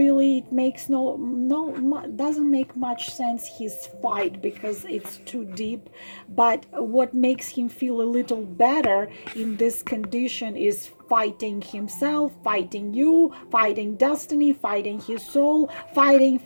it makes doesn't make much sense, his fight, because it's too deep. But what makes him feel a little better in this condition is fighting himself, fighting you, fighting destiny, fighting his soul, fighting.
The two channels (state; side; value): inverted; both; correlation -1.00